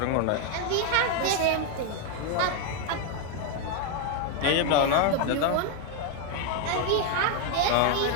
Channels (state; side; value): different; both; correlation 0.01